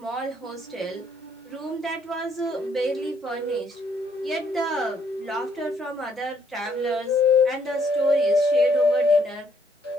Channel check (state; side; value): normal; both; correlation 0.69